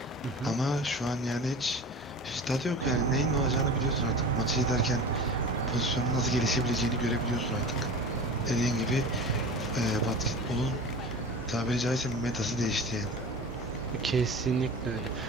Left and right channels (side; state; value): both; normal; correlation 0.35